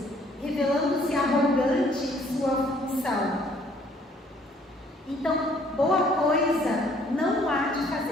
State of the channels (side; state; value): both; normal; correlation 0.62